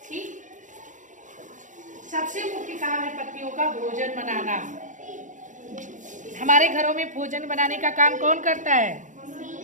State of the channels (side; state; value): left; late; 0.37 ms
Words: ठीक, सबसे मुख्य काम है पत्तियों का भोजन बनाना। हमारे घरों में भोजन बनाने का काम कौन करता है?